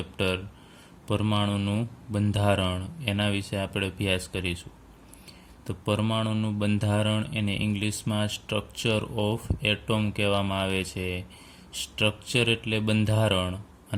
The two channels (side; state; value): both; identical; correlation 1.00